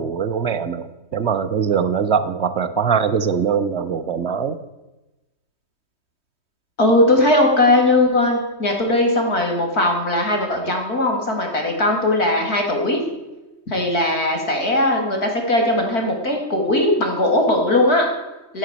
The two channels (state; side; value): late; right; 3.2 ms